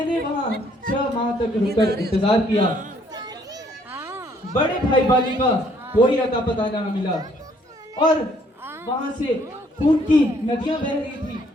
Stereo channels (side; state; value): both; normal; correlation 0.65